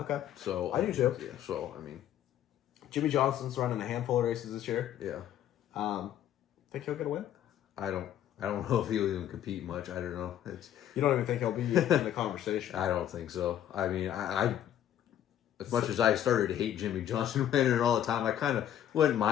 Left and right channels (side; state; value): right; quieter; 10.9 dB